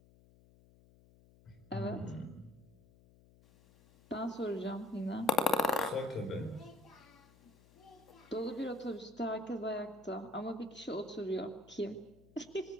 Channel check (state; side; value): noise; left; hum, 26 dB below the sound